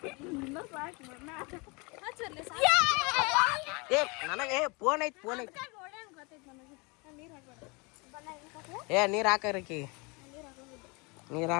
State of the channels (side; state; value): right; quieter; 29.0 dB